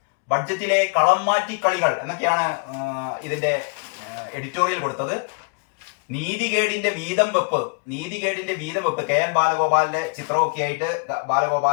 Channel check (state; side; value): quieter; right; 35.9 dB